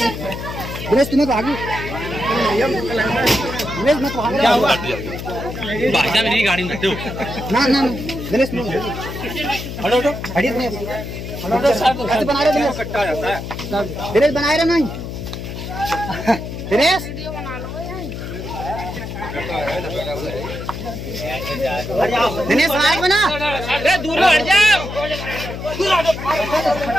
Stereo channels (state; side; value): noise; left; hum, 8 dB below the sound